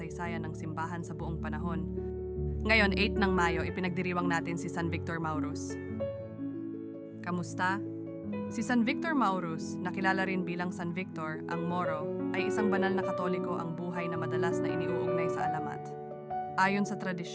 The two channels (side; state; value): both; identical; correlation 1.00